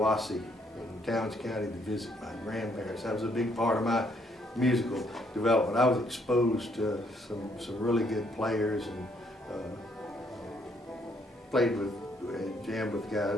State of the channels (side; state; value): both; normal; correlation 0.70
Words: in Towns County to visit my grandparents. That was a big part of my musical development. I was exposed to some really good players and played with and jammed with